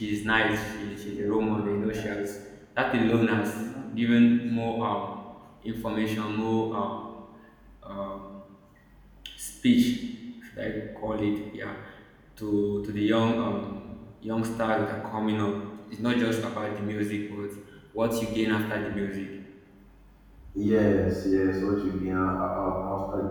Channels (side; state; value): both; identical; correlation 1.00